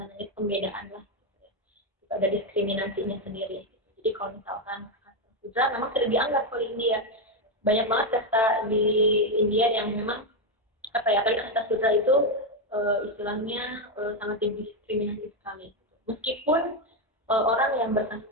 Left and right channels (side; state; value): both; normal; correlation 0.06